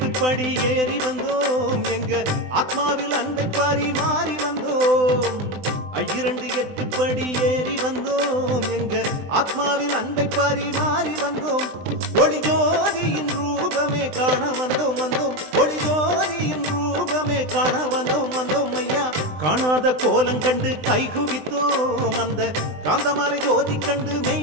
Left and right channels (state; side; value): late; left; 20 ms